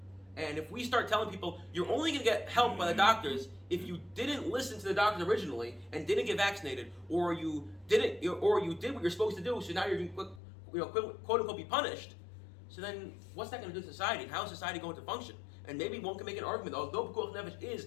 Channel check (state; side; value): drops out; right; at 10.4 s